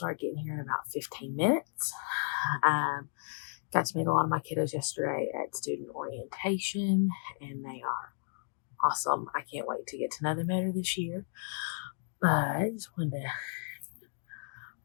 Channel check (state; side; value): silent; right; digital silence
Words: getting here in about 15 minutes. Got to meet a lot of my kiddos yesterday at student orientation, and they are awesome. I can't wait to get to know them better this year. But I just wanted to